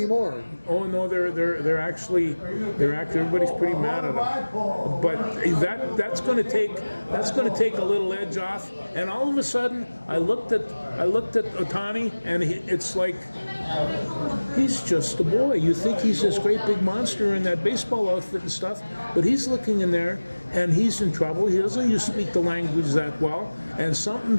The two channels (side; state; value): both; inverted; correlation -1.00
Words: Oh no, they're actually everybody's pretty mad at them. But that's going to take a little edge off. And all of a sudden, I looked at Ohtani, and it's like he's just a boy. You think he's this great big monster in that baseball outfit and stuff, but he's looking in there and he's in trouble. He doesn't speak the language that well, and